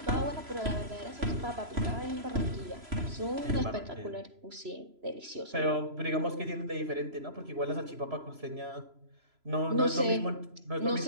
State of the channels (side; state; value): left; late; 3.0 ms